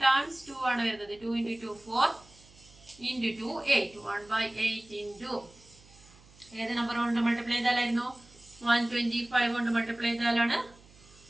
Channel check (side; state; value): right; noise; hum, 25 dB below the sound